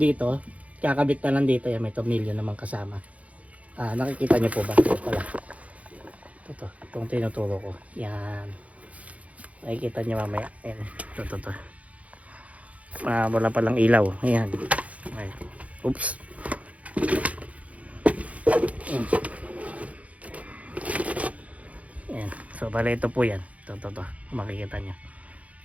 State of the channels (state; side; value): late; left; 0.067 ms